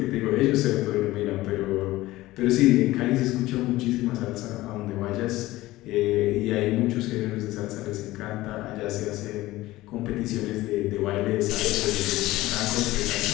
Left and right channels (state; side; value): quieter; right; 17.6 dB